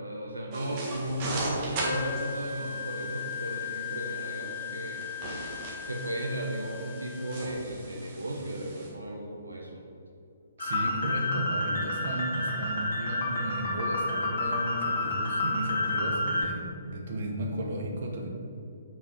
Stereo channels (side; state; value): both; inverted; correlation -0.66